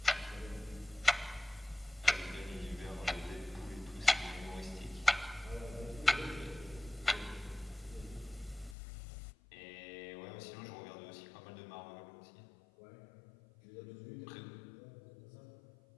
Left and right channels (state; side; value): drops out; right; at 8.8 s